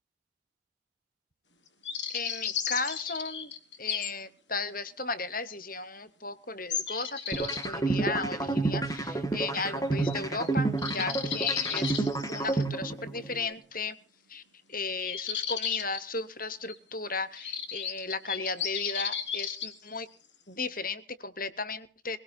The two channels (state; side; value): normal; both; correlation 0.28